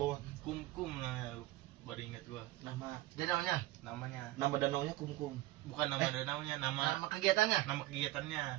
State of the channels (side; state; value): left; quieter; 17.6 dB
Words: Kumkum namanya, lu baru ingat gua. Dia namanya. Namanya Nama danaunya kumkum. bukan nama danaunya, Nama kegiatannya. nama kegiatannya.